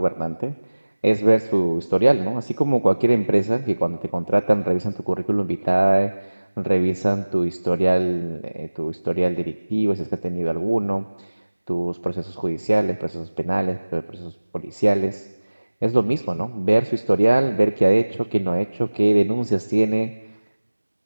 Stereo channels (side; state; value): both; inverted; correlation -1.00